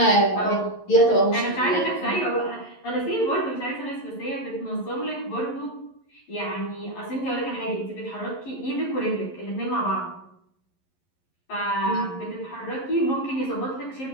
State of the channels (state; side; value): late; right; 11 ms